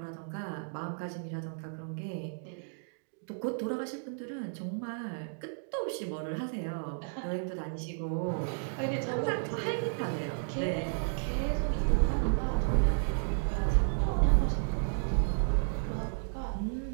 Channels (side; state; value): left; silent; digital silence